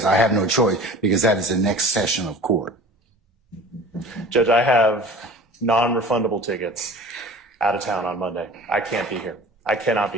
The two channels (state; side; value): normal; both; correlation 0.42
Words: I have no choice because that is the next session of court. Judge, I have non-refundable tickets out of town on Monday. I can't be here. I cannot